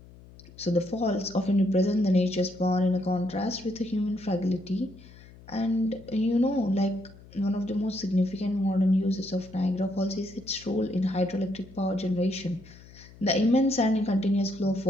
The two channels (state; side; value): noise; left; hum, 21 dB below the sound